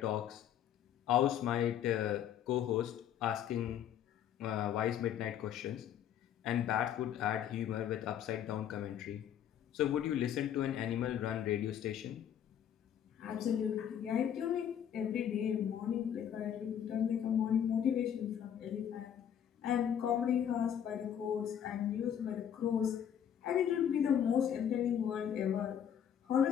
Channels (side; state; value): right; quieter; 9.4 dB